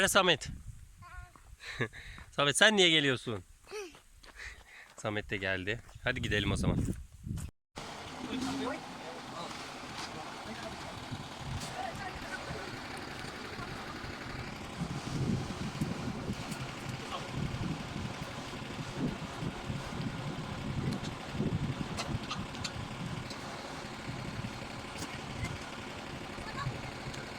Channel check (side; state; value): both; identical; correlation 1.00